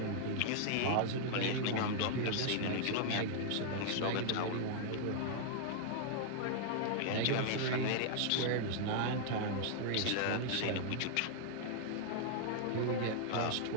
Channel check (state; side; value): different; both; correlation 0.00